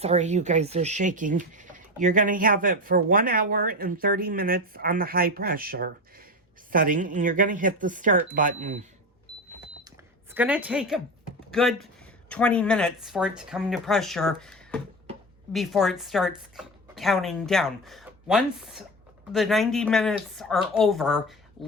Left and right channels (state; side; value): normal; both; correlation 0.22